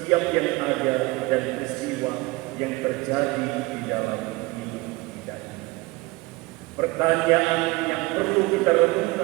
yang ada dan peristiwa yang terjadi di dalam hidup kita. Pertanyaan yang perlu kita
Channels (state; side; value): quieter; left; 22.2 dB